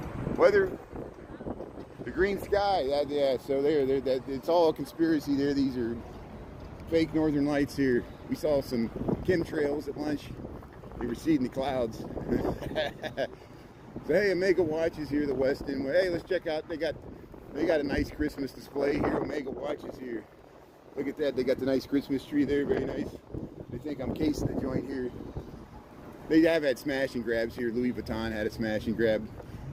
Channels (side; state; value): both; identical; correlation 1.00